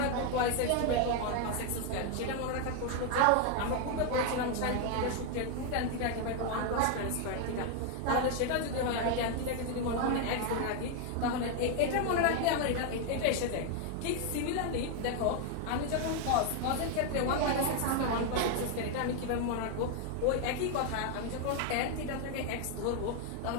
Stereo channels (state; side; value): different; both; correlation 0.01